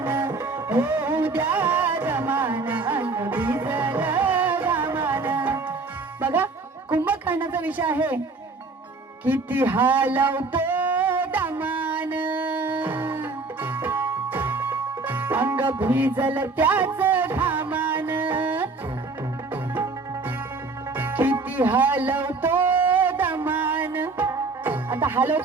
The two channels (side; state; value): left; quieter; 3.8 dB